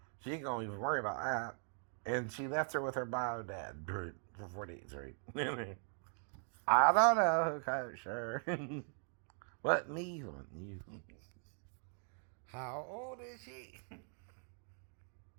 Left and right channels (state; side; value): silent; left; 51 dB below the other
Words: She ain't gonna even worry about that. And she left her with her bio dad for 4 days, right? I don't know who coached her. What me? What you? How old is she?